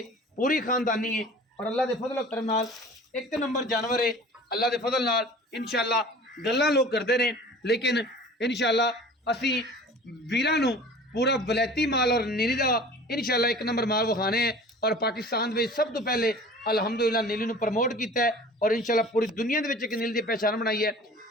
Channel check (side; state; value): both; normal; correlation 0.43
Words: पूरी खानदानी है और अल्लाह के फजल करम नाल एक नंबर जानवर है। अल्लाह के फजल नाल इंशाअल्लाह गल्लां लोग करते हैं, लेकिन इंशाअल्लाह असी वीरां नूं पूरा विलायती माल और नीली का इंशाअल्लाह एक नंबर माल विखाने हैं। और पाकिस्तान में सब तो पहले अलहमदुलिल्लाह नीली नूं प्रमोट किया है और इंशाअल्लाह पूरी दुनिया के एक नीली की पहचान बनाई है।